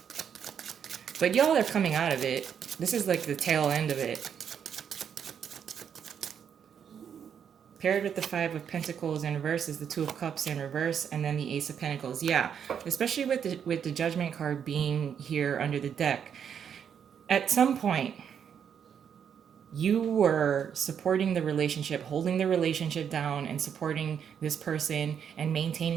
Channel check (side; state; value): left; quieter; 8.0 dB